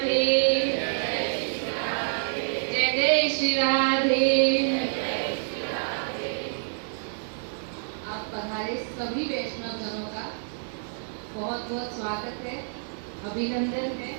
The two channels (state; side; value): silent; left; digital silence